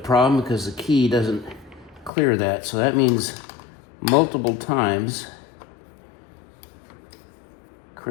because the key doesn't clear that, so that means multiple times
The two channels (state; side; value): drops out; right; at 2.1 s